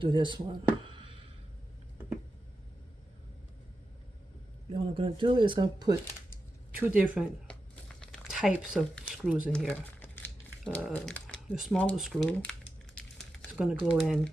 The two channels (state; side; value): normal; both; correlation 0.90